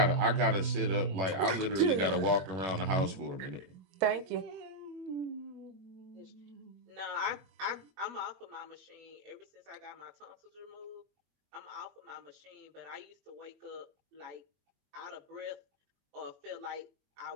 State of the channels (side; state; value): left; late; 21 ms